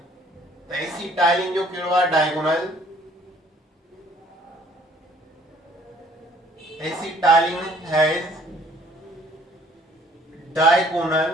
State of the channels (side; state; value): both; normal; correlation 0.59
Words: त एसिटाइलिन जो कहिड़ो आहे diagonal acetylene has diagonal